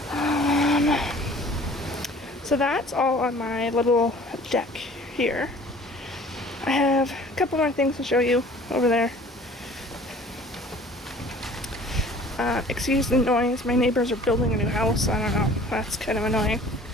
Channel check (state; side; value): normal; both; correlation 0.49